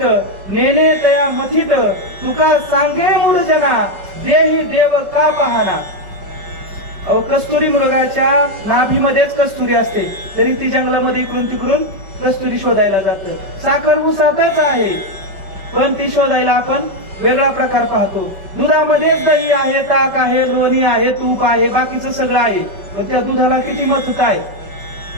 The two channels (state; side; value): late; left; 5.2 ms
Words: नेने तया मथित, तुका सांगे मूळ जना देही देव का पाहना. अहो कस्तुरी मृगाच्या नाभीमध्येच कस्तुरी असते, तरी ती जंगलामध्ये इकडून तिकडून कस्तुरी शोधायला जातं. साखर ऊसातच आहे, पण ती शोधायला आपण वेगळा प्रकार पाहतो. दुधामध्येच दही आहे, ताक आहे, लोणी आहे, तूप आहे, बाकीचं सगळं आहे, पण त्या दुधाला किती मथुत आहे,